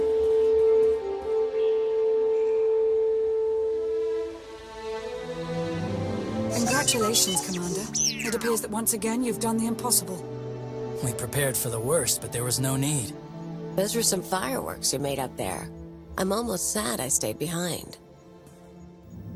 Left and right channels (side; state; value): both; identical; correlation 1.00